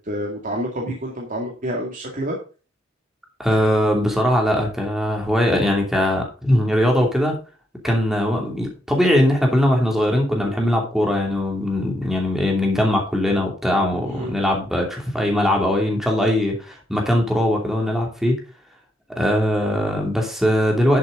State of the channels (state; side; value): normal; both; correlation 0.79